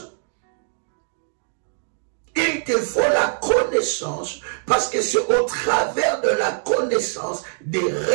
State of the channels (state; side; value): silent; left; digital silence